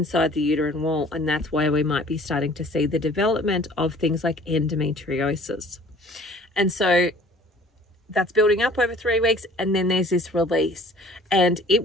the uterine wall. And that's why we might be starting to see the development of things like endometriosis. And so that's building up over 3 weeks, and then there's this release, and it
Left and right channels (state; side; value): normal; both; correlation 0.51